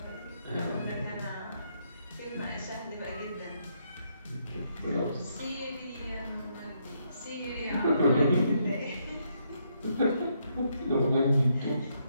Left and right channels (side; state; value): both; inverted; correlation -0.75